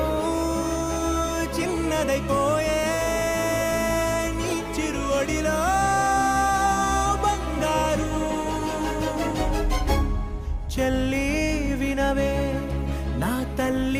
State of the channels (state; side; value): identical; both; correlation 1.00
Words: చిన్నదైపోయే నీ చిరువడిలో బంగారు చెల్లి వినవే నా